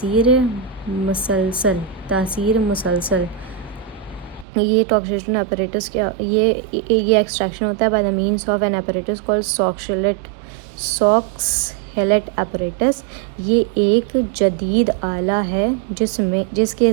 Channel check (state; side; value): drops out; left; at 4.5 s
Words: مسلسل. یہ ٹاکسیشن اپریٹس یہ ایکسٹریکشن ہوتا ہے by the means of an apparatus called Soxhlet apparatus. یہ ایک جدید آلہ ہے جس کے